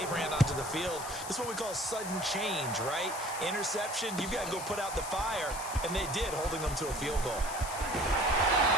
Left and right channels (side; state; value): left; noise; hiss, 9 dB below the sound